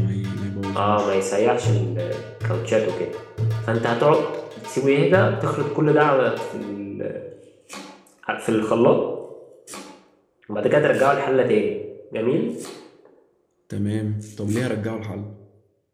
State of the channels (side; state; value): both; identical; correlation 1.00